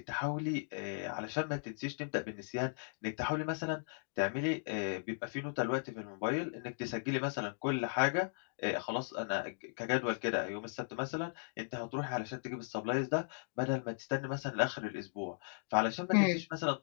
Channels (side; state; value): right; silent; digital silence